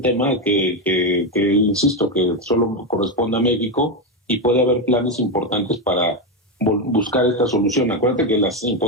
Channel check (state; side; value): normal; both; correlation 0.09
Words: que insisto, que solo corresponde a México y puede haber planes importantes para buscar esta solución. Acuérdate que las